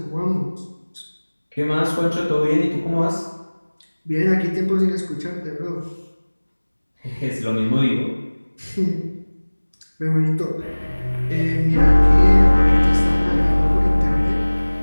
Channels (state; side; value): inverted; both; correlation -1.00